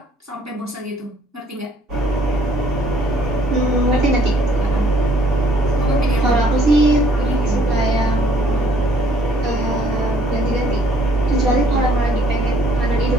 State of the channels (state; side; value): normal; both; correlation 0.63